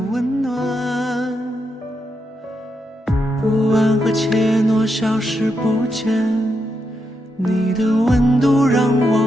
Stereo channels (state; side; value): normal; both; correlation 0.83